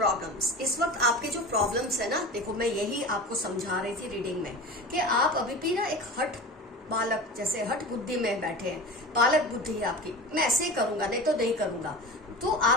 इस वक्त आपके जो प्रॉब्लम्स है ना, देखो मैं यही आपको समझा रही थी रीडिंग में कि आप अभी भी ना एक हठ बालक जैसे हठ बुद्धि में बैठे हैं, बालक बुद्धि है आपकी, मैं ऐसे ही करूंगा नहीं तो नहीं करूंगा, तो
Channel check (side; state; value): both; normal; correlation 0.32